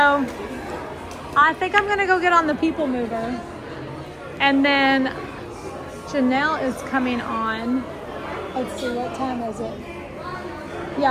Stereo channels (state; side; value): identical; both; correlation 1.00